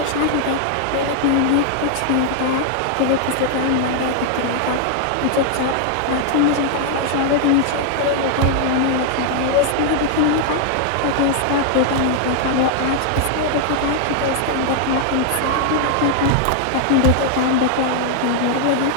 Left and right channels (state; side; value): different; both; correlation 0.00